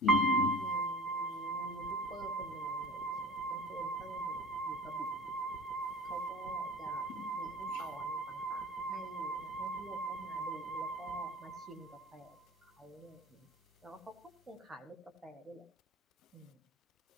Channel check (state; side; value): normal; both; correlation 0.39